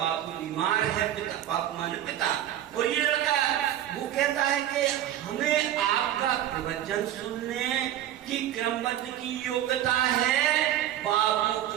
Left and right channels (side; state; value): left; quieter; 11.9 dB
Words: बीमार है, पिता बापू माने पिता। और ये लड़का वो कहता है कि हमें आपका प्रवचन सुनने की क्रमबद्ध की योग्यता है, बाबू